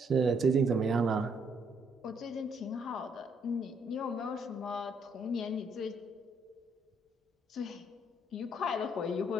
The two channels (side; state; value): both; normal; correlation 0.71